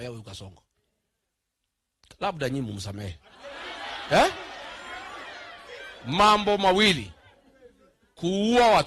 huyu Kasongo. Labda nyinyi mumsamehe. Mambo mawili: kuua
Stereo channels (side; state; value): both; identical; correlation 1.00